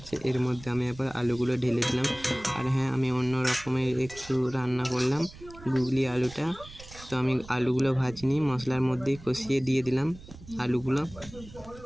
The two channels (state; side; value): noise; right; rumble, 18 dB below the sound